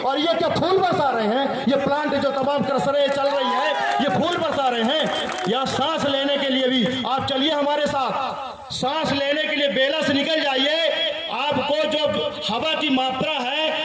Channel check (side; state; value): both; identical; correlation 1.00